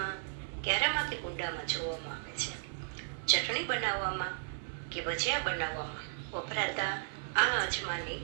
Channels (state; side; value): silent; left; 54 dB below the other